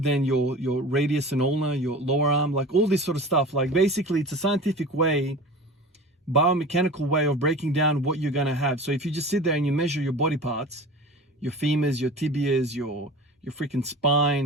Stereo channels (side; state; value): both; normal; correlation 0.36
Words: your radius and ulna, your lower arm, like all this sort of stuff. Like basically it's a scientific way, biomechanical way of breaking down what you're going to have. So if you just sit there and you measure your body parts, your femurs, your tibias, your freaking